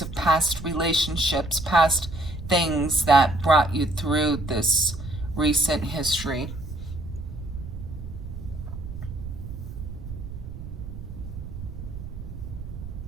of past relationships, past things that brought you through this recent history.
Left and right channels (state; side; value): noise; right; rumble, 9 dB below the sound